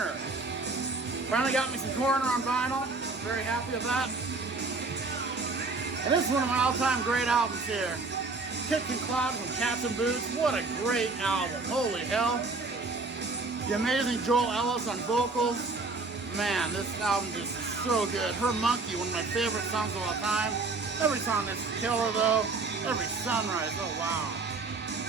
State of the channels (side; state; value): left; quieter; 3.8 dB